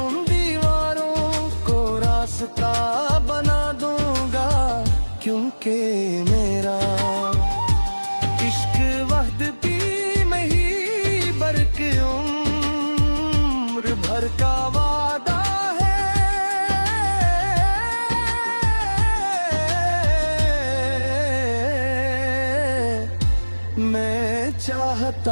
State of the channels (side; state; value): both; inverted; correlation -1.00